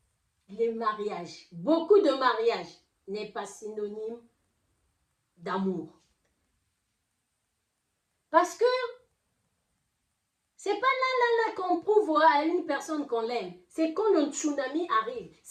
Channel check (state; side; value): identical; both; correlation 1.00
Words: les mariages, beaucoup de mariages, n'est pas synonyme d'amour. Parce que c'est pas là qu'on prouve à une personne qu'on l'aime. C'est quand le tsunami arrive,